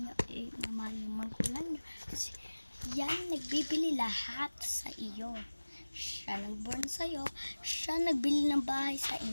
naman yung magulang niya. Kasi yan nagbibili lahat sa iyo. Siya nagborn sa'yo, siya nagbili ng bahay sa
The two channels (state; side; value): inverted; both; correlation -1.00